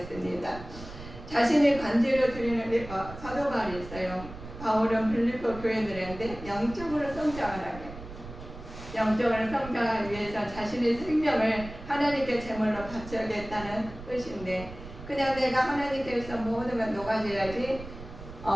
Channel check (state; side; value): noise; right; rumble, 13 dB below the sound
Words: 자신의 관제로 드리는 사도 바울이 있어요. 바울은 빌립보 교회들한테 영적으로 성장을 하게, 영적으로 성장하기 위해서 자신의 생명을 하나님께 제물로 바쳐야겠다는 뜻인데 그냥 내가 하나님께서 모든 걸 녹아줘야지